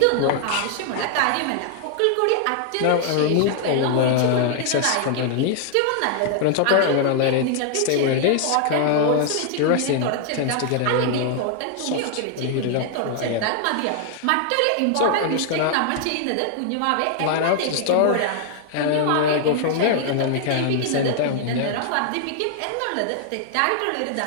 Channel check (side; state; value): both; different; correlation 0.00